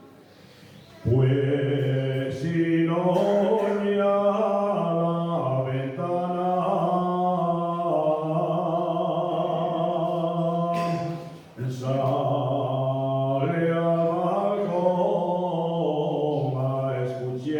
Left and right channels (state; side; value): identical; both; correlation 1.00